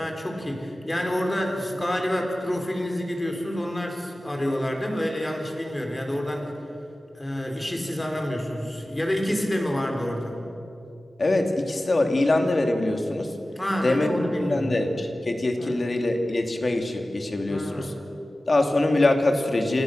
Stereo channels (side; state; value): both; normal; correlation 0.96